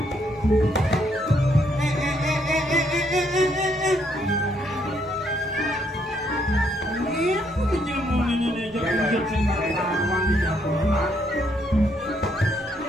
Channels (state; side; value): normal; both; correlation 0.72